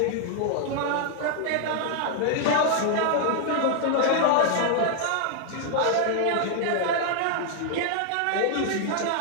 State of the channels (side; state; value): both; different; correlation 0.00